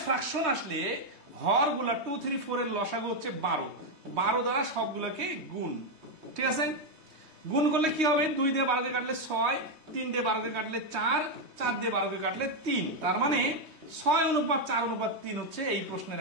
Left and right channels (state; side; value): late; left; 3.2 ms